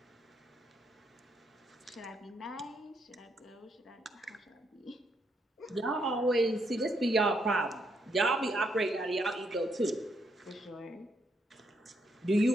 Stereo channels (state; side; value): normal; both; correlation 0.76